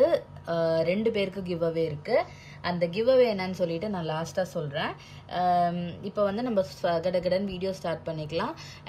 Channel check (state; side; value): identical; both; correlation 1.00